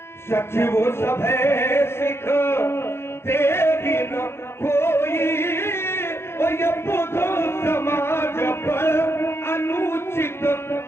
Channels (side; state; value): right; late; 0.12 ms